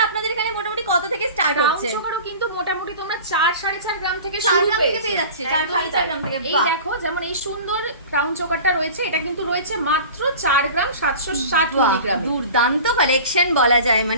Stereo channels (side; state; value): both; inverted; correlation -0.38